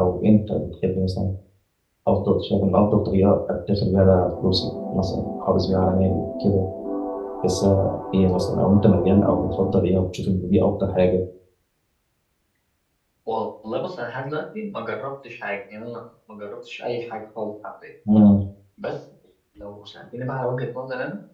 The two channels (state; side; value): identical; both; correlation 1.00